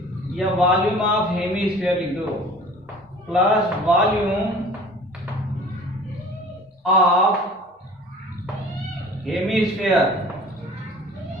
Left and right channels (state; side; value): normal; both; correlation 0.46